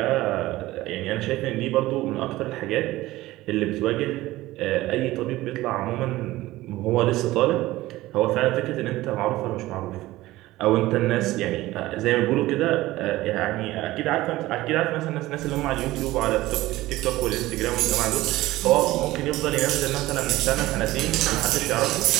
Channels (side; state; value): left; quieter; 17.4 dB